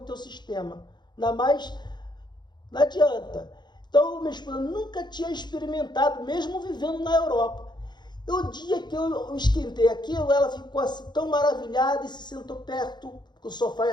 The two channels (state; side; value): late; right; 0.21 ms